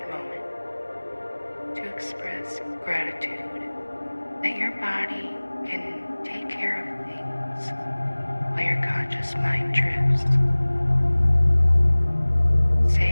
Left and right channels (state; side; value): inverted; both; correlation -1.00